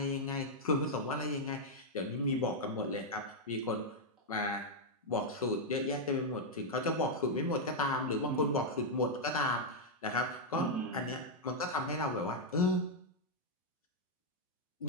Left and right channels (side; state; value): both; normal; correlation -0.02